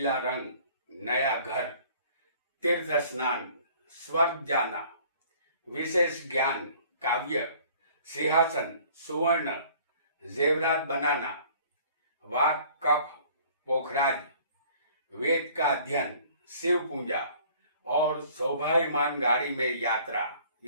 रंग, नया घर, तीर्थ स्नान, स्वर्ग जाना, विशेष ज्ञान, काव्य, सिंहासन, सुवर्ण, जेवरात बनाना, वाक, कफ, पोखराज, वेद का अध्ययन, शिव पूजा और सौभाग्यमान गाड़ी में यात्रा,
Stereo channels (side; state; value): both; inverted; correlation -0.53